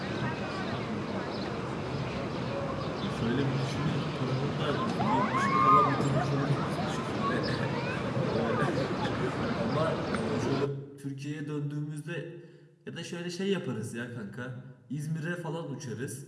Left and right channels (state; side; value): identical; both; correlation 1.00